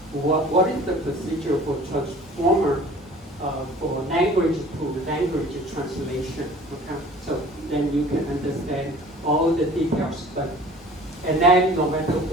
What is the procedure for transformer for language to language translation, okay? So then you can understand all the details, and then no matter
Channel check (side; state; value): both; normal; correlation 0.47